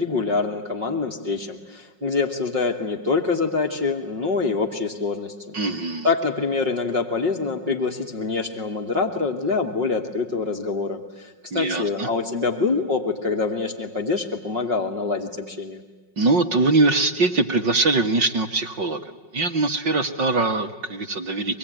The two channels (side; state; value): left; late; 5.5 ms